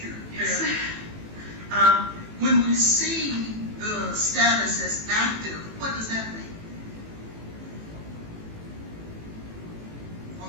Yes. When we see the status as active, what does that mean? On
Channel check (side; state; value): left; late; 18 ms